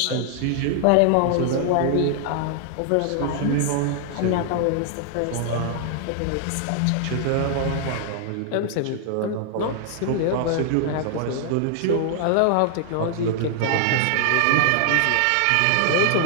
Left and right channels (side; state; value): both; different; correlation 0.00